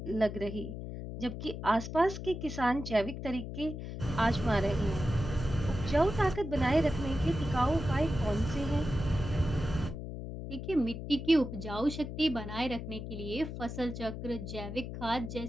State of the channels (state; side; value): noise; left; hum, 7 dB below the sound